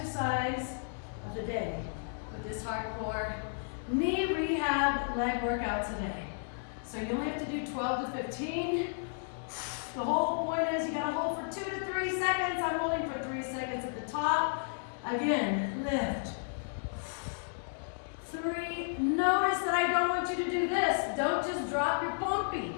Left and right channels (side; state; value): right; silent; digital silence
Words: of the day with this hardcore knee rehab leg workout today. So you only have to do 12 to 15. The whole point is you gotta hold for 2 to 3 seconds. I'm holding for 3 seconds at the top. Again, lift. 3, notice that I don't want you to do this. Don't just drop your pumpy.